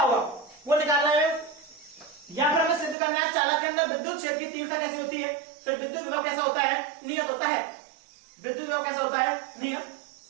होगा वो निकालना है, या फिर हमें सिद्ध करना है चालक के अंदर विद्युत क्षेत्र की तीव्रता कैसी होती है, फिर विद्युत विभव कैसा होता है? नियत होता है। विद्युत विभव कैसा होता है? नियत।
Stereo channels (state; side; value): drops out; left; at 3.0 s